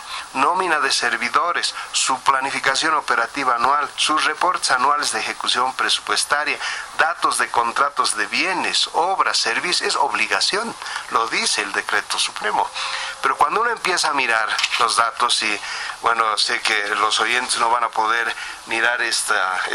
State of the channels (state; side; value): identical; both; correlation 1.00